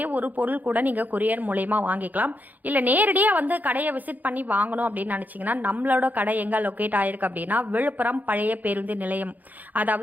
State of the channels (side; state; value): left; late; 0.082 ms